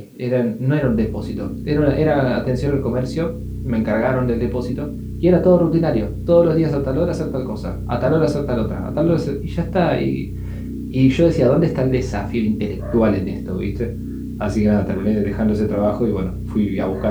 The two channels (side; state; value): both; identical; correlation 1.00